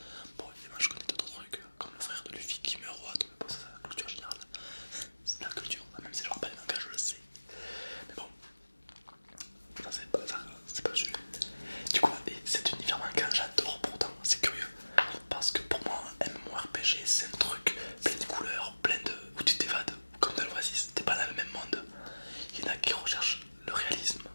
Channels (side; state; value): both; inverted; correlation -1.00